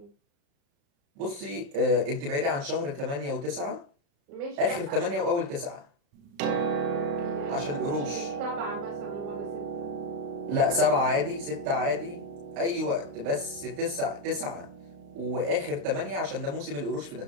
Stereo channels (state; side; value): late; left; 35 ms